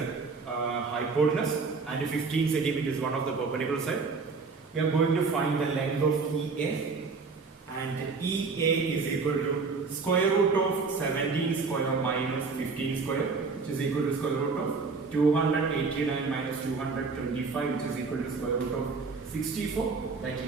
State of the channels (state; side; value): quieter; left; 4.5 dB